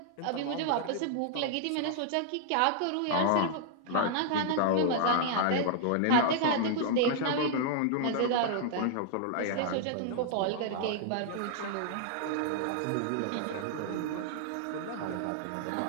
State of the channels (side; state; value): both; different; correlation -0.01